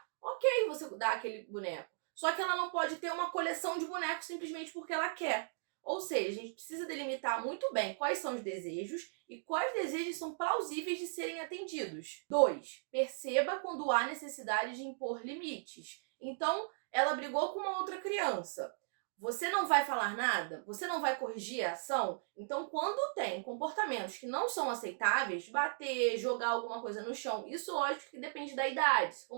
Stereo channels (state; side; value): silent; left; digital silence